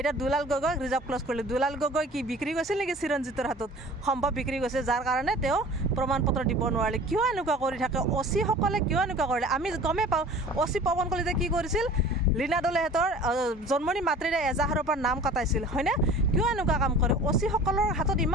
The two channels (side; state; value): both; normal; correlation 0.44